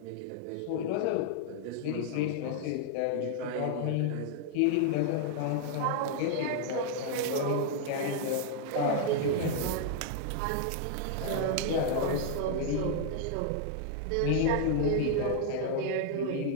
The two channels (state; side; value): different; both; correlation 0.00